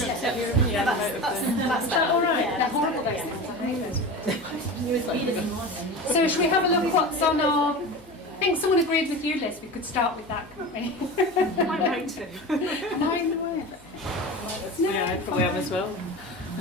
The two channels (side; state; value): left; noise; hum, 26 dB below the sound